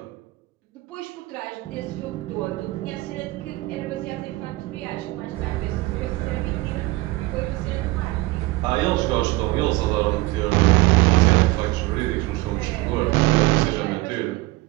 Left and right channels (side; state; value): left; quieter; 20.2 dB